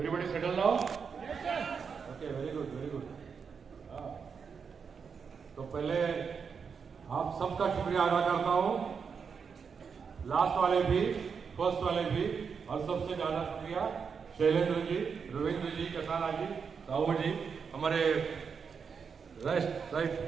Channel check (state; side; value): quieter; left; 6.1 dB